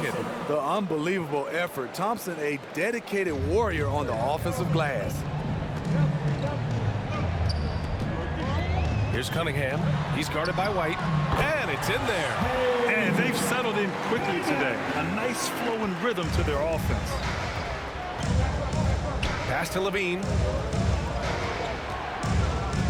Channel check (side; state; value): both; identical; correlation 1.00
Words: The unbelievable effort. Thompson, a dedicated warrior on the offensive glass. Here's Cunningham. He's guarded by White. And it's in there. And they've settled in quickly today. A nice flowing rhythm to their offense. Pass to Levine.